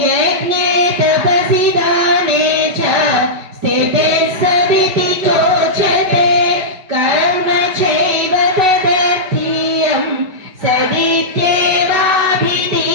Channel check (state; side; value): late; left; 5.2 ms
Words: यज्ञे तपसि दाने च स्थिते सदिति चोच्यते कर्म चैव तदर्थीयं